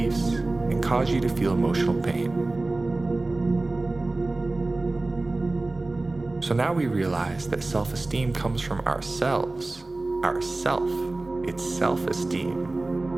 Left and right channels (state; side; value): quieter; left; 3.0 dB